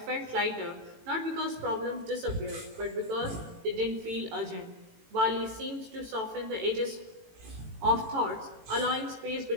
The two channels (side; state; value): left; late; 18 ms